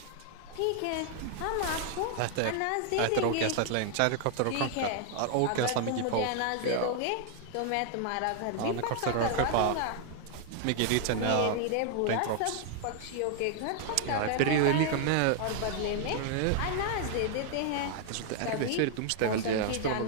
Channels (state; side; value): different; both; correlation 0.00